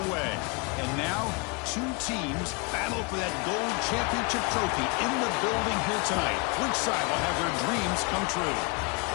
the way. And now, two teams battle for that gold championship trophy in the building here tonight. Which side will have their dreams come true?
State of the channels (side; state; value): right; quieter; 29.9 dB